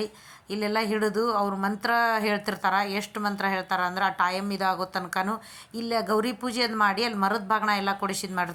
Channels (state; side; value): identical; both; correlation 1.00